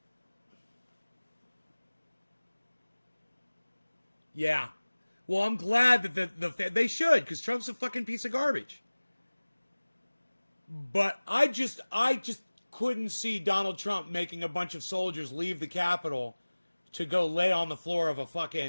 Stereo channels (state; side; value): inverted; both; correlation -1.00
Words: yeah. Well, I'm glad that they should, because Trump's a fucking piece of garbage. But I just couldn't see Donald Trump making a bunch of soldiers leave the Capitol to go lay on the floor of a